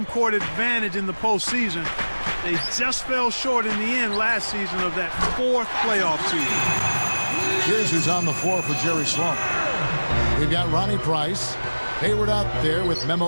court advantage in the postseason. They just fell short in the end last season of that fourth playoff season. Here's who's on the floor for Jerry Sloan. We've got Ronnie Price, Hayward out there with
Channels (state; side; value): inverted; both; correlation -1.00